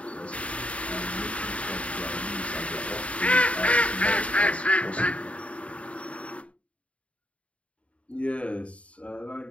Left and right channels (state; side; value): late; right; 0.064 ms